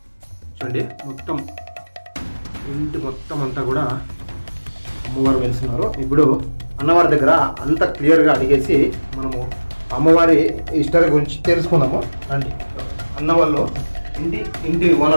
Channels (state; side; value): inverted; both; correlation -1.00